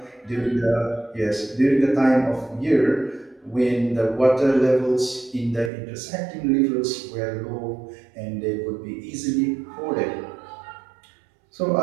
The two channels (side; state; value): left; drops out; at 5.7 s